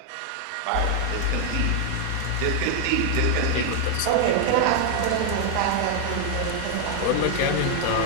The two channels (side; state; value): both; different; correlation 0.00